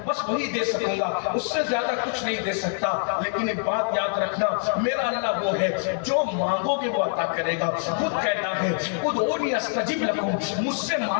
بس وہی دے سکوں گا, اس سے زیادہ کچھ نہیں دے سکتا. لیکن ایک بات یاد رکھنا, میرا اللہ وہ ہے جو مانگو گے وہ عطا کرے گا. خود کہتا ہے ادعونی استجب لکم, مجھ سے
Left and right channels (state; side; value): silent; right; 62 dB below the other